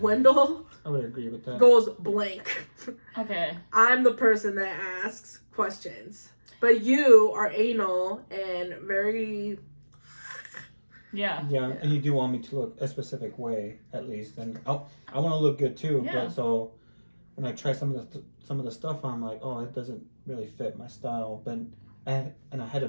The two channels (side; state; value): both; inverted; correlation -1.00